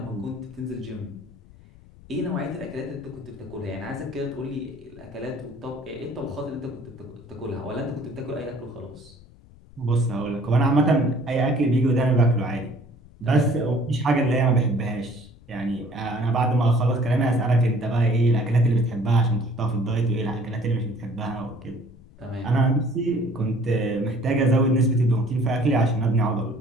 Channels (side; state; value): left; noise; rumble, 23 dB below the sound